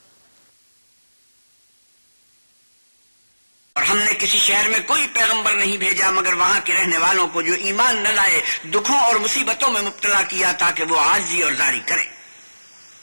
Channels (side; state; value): both; inverted; correlation -1.00